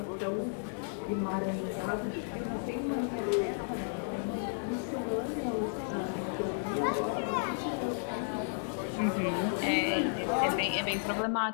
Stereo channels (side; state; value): right; silent; digital silence